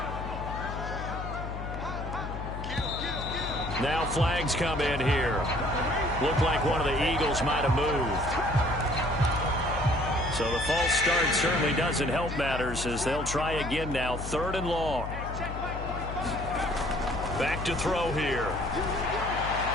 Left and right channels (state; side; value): noise; left; hum, 7 dB below the sound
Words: Now flags come in here. Looked like one of the Eagles might have moved. So the false start certainly doesn't help matters as they'll try again now. 3rd and long. Back to throw here.